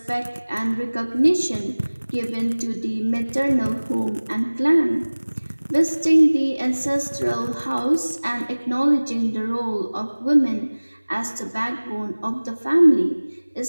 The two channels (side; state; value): both; inverted; correlation -1.00